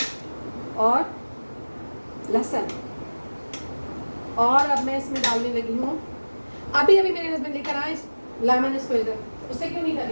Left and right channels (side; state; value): both; inverted; correlation -1.00